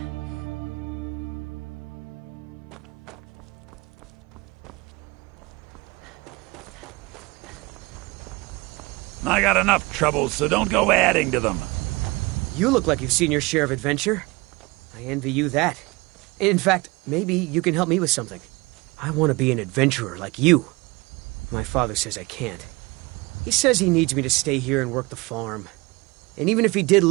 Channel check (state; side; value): quieter; left; 24.2 dB